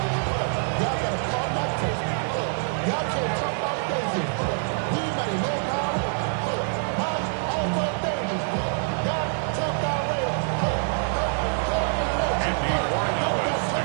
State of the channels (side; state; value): left; silent; 57 dB below the other